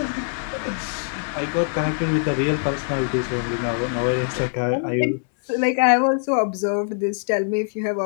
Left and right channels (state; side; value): silent; right; digital silence